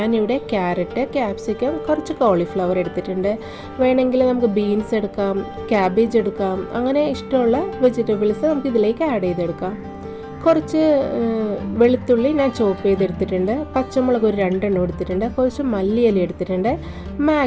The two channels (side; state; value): both; identical; correlation 1.00